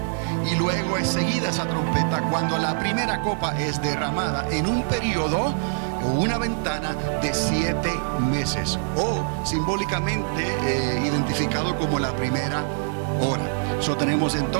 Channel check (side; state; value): left; silent; 62 dB below the other